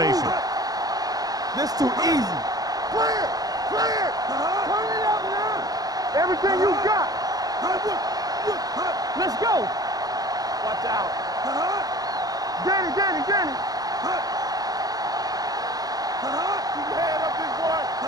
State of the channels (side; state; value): left; late; 0.18 ms